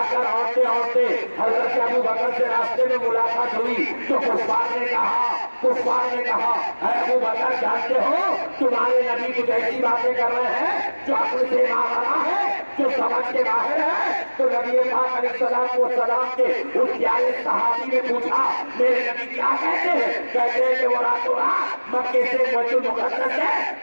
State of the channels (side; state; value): both; inverted; correlation -1.00